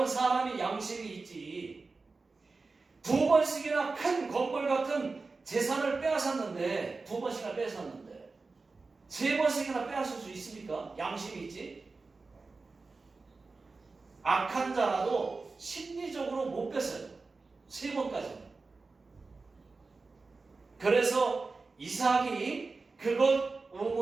사람이 양심이 있지. 두 번씩이나 큰 건물 같은 재산을 빼앗았는데, 두 번씩이나 빼앗았는데 세 번씩이나 빼앗을 수 있습니까? 양심이 있지. 악한 자라도 심리적으로 못 뺐어요. 세 번까지. 그래서 이삭이 그것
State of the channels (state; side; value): quieter; left; 3.9 dB